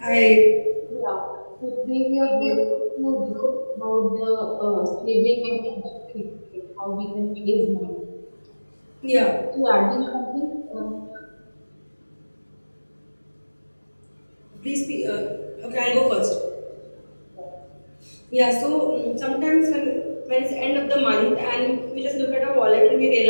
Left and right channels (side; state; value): both; inverted; correlation -1.00